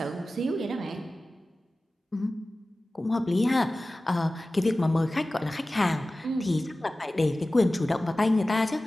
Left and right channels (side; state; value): both; normal; correlation 0.96